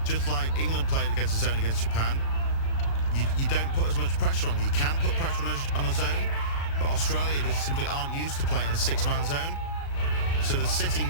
just like England played against a zone against Japan, you don't put as much pressure on. You can put pressure on a zone, but Australia just simply aren't used to playing a 6-man zone. So they're sitting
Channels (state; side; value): late; right; 36 ms